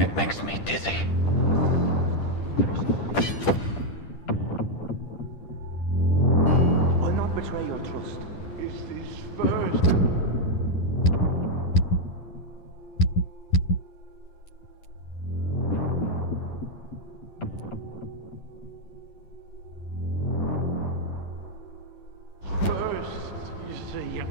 makes me dizzy. I'll not betray your trust. It's this first.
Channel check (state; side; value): late; right; 10 ms